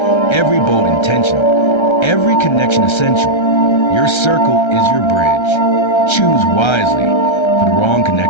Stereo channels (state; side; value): late; right; 1.3 ms